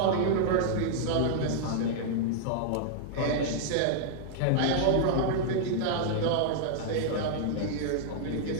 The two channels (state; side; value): different; both; correlation -0.01